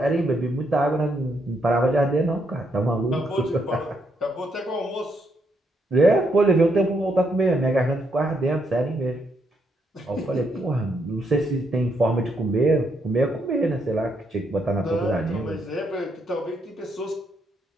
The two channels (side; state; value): both; normal; correlation 0.76